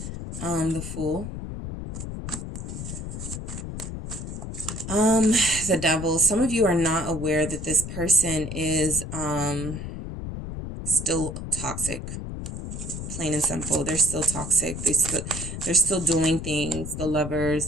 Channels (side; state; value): left; noise; rumble, 7 dB below the sound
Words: The Fool. The Devil. Some of you are not aware that this person is still toxic. Plain and simple. They're still toxic. They're still doing things. The Lovers,